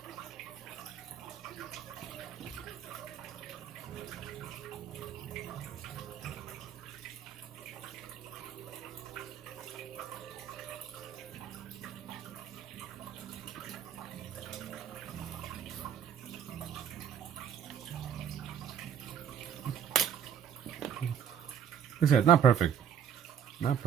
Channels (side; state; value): left; quieter; 8.5 dB